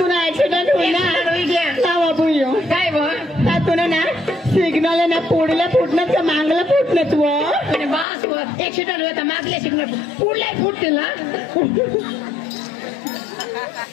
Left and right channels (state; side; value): drops out; right; at 8.1 s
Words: एक्सिडेंट काय तुला ना सिग्नल ना पुढल्या फुटण्यात का मागला फुटण्यात बस एक्सिडेंट होता मागल्या सिग्नल पुढल्या फुटते ना